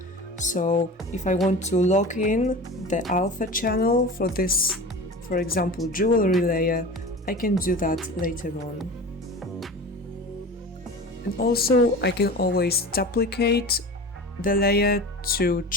So if I want to lock in the alpha channel for this, for example, jewelry layer, I can do that later on. And also I can always duplicate the layer to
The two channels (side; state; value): both; normal; correlation 0.34